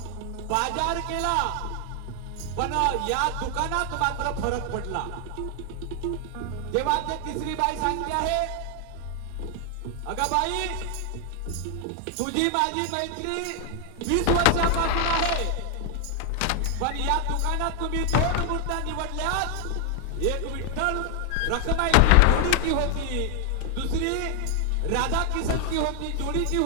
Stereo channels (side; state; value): both; different; correlation 0.00